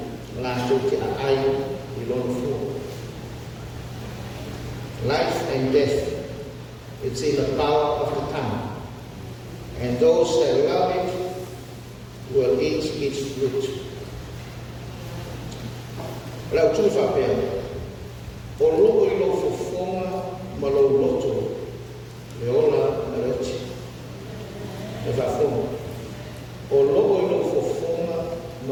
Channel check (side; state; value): both; identical; correlation 1.00